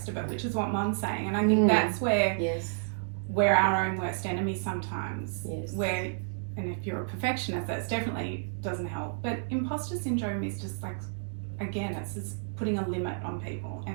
of it, which is what Mom's saying. And I think that's where we're our own worst enemy sometimes. Where, and if you're a perfectionist, that's definitely doesn't help. But imposter syndrome is just like, again, it's just putting a limit on people.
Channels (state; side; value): silent; left; digital silence